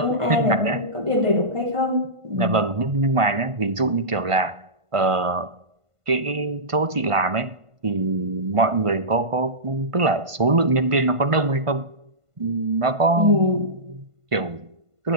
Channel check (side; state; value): left; late; 1.5 ms